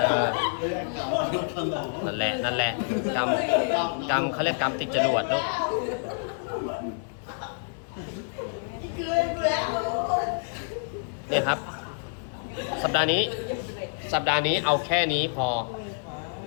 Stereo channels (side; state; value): right; silent; digital silence